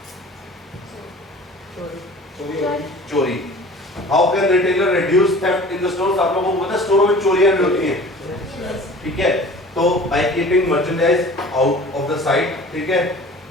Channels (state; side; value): normal; both; correlation 0.44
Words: चोरी। How can retailer reduce theft in the stores, आप लोगों को पता है स्टोरों में चोरियां भी होती हैं, ठीक है। तो by keeping merchandise out of the site, ठीक है,